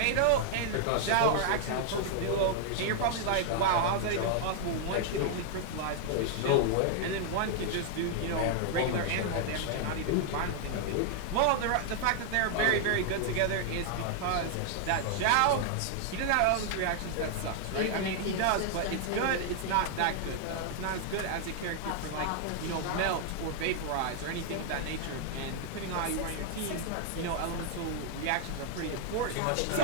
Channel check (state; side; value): different; both; correlation 0.00